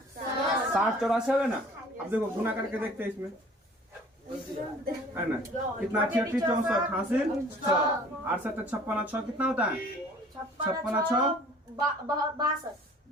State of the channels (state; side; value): normal; both; correlation 0.50